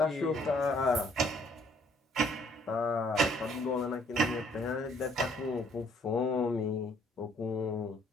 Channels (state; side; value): normal; both; correlation 0.62